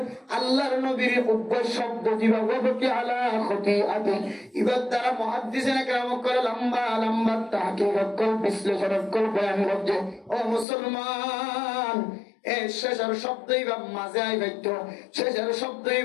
আল্লাহর নবীর উভয় শব্দ যেভাবে কি আলা খতিআতি ইবাদ দ্বারা মুহাদ্দিসিনে কেরাম করে লম্বা লম্বা তাহকিক কল বিশ্লেষণ কল বয়ান করছে। ও মুসলমান, এ শেষের শব্দই বা মাঝে আই বাইতো, শেষের শব্দই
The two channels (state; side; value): drops out; right; at 10.7 s